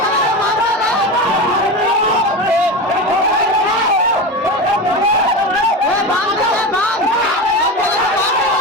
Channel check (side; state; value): both; normal; correlation 0.23